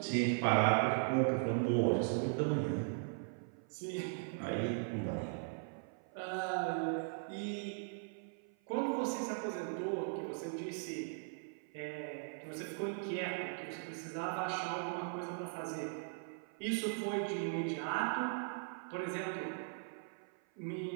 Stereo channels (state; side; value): silent; left; 52 dB below the other